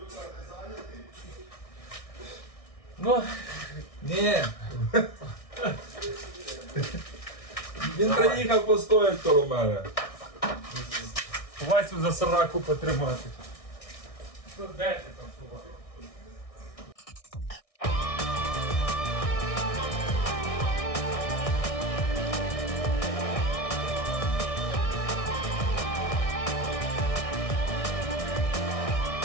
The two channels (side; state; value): right; late; 1.6 ms